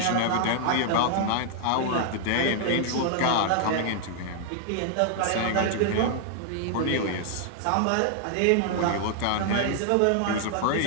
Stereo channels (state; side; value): different; both; correlation 0.00